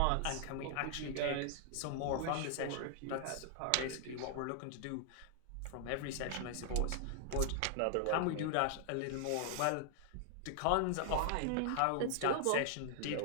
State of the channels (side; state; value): both; different; correlation 0.00